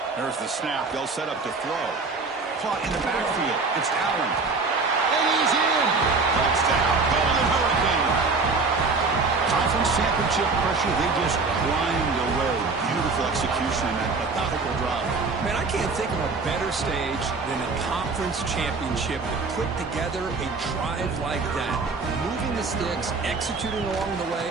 There's the snap. They'll set up to throw. Caught in the backfield. It's Allen. And he's in. Touchdown. Golden Hurricane. Conference championship pressure, they just grind away. Beautiful execution and that methodical drive. Man, I can't think of a better stage than a conference championship to put together a drive like that. Moving the sticks, executing along the way,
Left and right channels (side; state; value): left; quieter; 4.1 dB